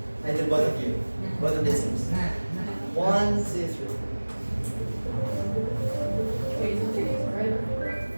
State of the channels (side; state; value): both; inverted; correlation -1.00